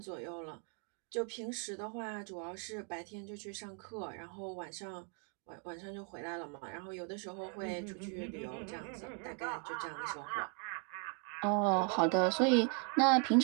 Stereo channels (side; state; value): left; quieter; 37.5 dB